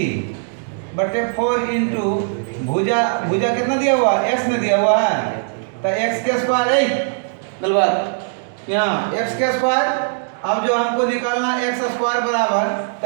इंटू भुजा कितना दिया हुआ है? x में दिया हुआ है, तो x के स्क्वायर है गलबात यहाँ x के स्क्वायर। अब जो हमको निकालना x स्क्वायर बराबर,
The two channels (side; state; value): left; silent; digital silence